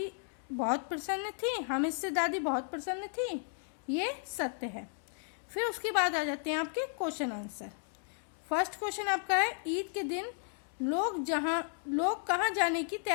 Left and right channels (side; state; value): right; silent; 55 dB below the other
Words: बहुत प्रसन्न थी, हामिद से दादी बहुत प्रसन्न थी, ये सत्य है। फिर उसके बाद आ जाते हैं आपके क्वेश्चन आंसर। फर्स्ट क्वेश्चन आपका है, ईद के दिन लोग कहाँ जाने की